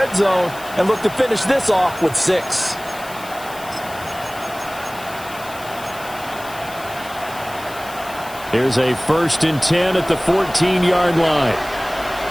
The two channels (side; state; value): left; noise; hiss, 17 dB below the sound